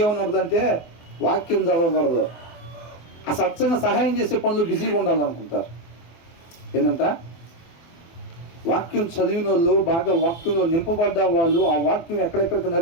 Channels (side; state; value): right; late; 24 ms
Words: ఏమన్నదంటే వాక్యం చదవకూడదు, ఆ సత్సంగా సహాయం చేసే పనులు బిజీగా ఉండాలనుకుంటారు. ఏంటంట? వాక్యం చదివిన వాళ్ళు, బాగా వాక్యంలో నింపబడ్డ వాళ్ళు, ఆ వాక్యం ఎక్కడెక్కడికి